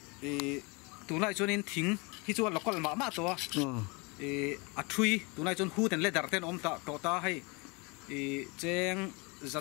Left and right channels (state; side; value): quieter; right; 28.8 dB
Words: tu nai chuan in thing hi chu local ma to a thui tu nai chuan hu ten le dar ten om ta to ta hai cheng